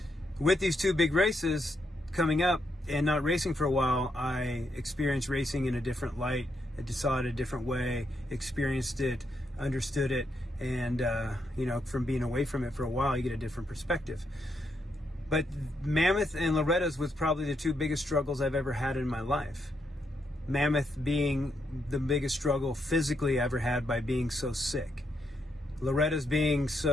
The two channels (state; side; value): normal; both; correlation 0.80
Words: with these two big races coming up and not racing for a while, I experienced racing in a different light. I saw it a different way, experienced it, understood it, and from being away from it for a while, you get a different perspective. But Mammoth and Loretta's was probably the two biggest struggles I've ever had in my life. Mammoth being the biggest struggle physically I ever had by being so sick. Loretta's being